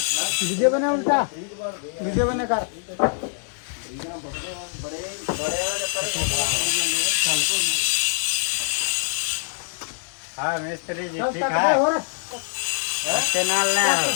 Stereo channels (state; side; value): silent; right; digital silence